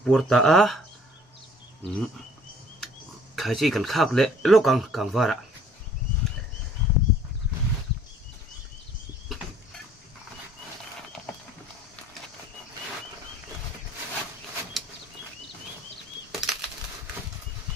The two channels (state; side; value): normal; both; correlation 0.56